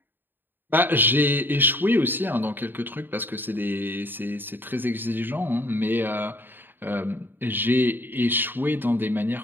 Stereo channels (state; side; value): late; left; 0.095 ms